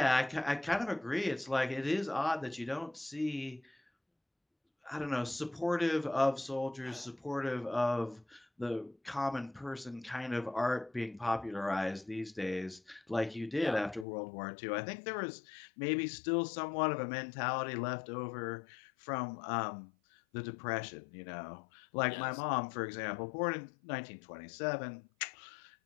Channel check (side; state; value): right; drops out; at 14.1 s